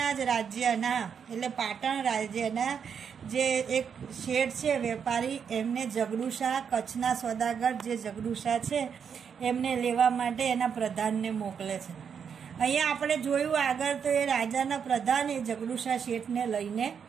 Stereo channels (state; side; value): quieter; left; 7.1 dB